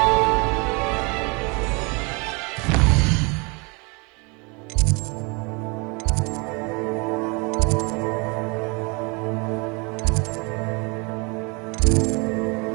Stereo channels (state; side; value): quieter; left; 30.1 dB